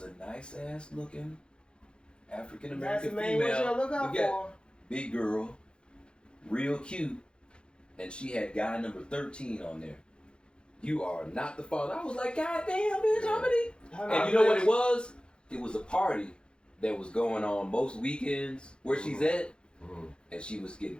a nice ass looking African That's the American main one you female. gotta look out We got for. big girl, real cute, and she had guy number 13 on there. You are not the father. I was like, God damn, bitch, how many? And you know what it was? It was a party that was going on most weekends where she's at, and she was getting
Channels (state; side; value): late; right; 0.053 ms